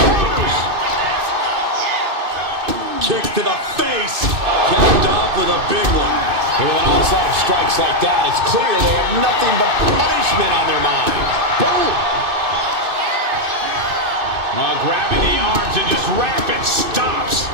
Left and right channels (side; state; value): left; late; 2.6 ms